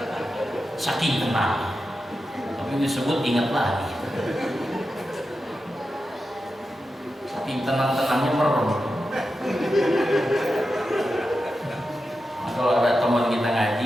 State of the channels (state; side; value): normal; both; correlation 0.90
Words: Saking tenang. Tapi disebut ingat lagi. Saking tenang-tenangnya merem. Kalau ada teman kita